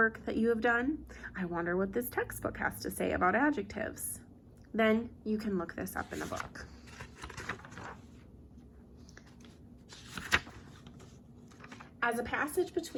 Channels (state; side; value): identical; both; correlation 1.00